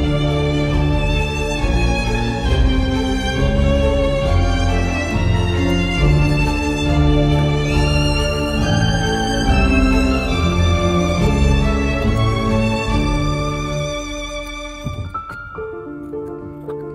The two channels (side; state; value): both; identical; correlation 1.00